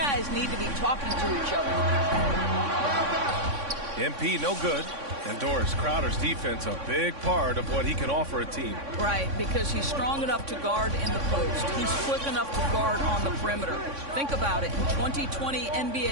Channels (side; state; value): left; late; 3.6 ms